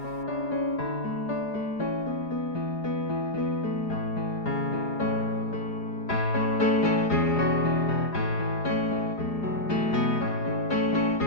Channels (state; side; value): late; right; 4.8 ms